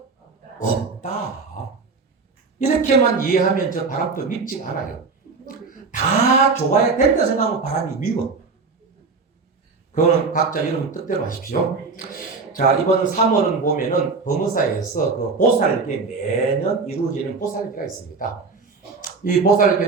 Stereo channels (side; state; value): left; quieter; 4.5 dB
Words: 없다. 이렇게만 이해하면 저 바람도 밉지가 않아요. 다 좋아야 된다 생각하면 바람이 미워. 그거는 각자 여러분 뜻대로 하십시오. 자, 이번 3월은 보면은 범어사에서 그 보살계 매년 이루어지는 보살계가 있습니다. 이